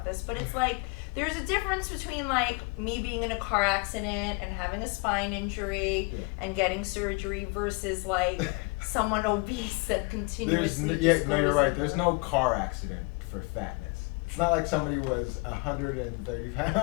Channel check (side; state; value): right; quieter; 28.8 dB